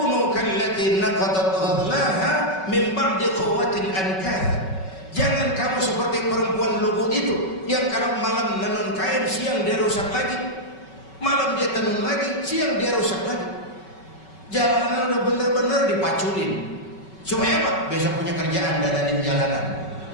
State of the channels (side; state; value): right; late; 5.3 ms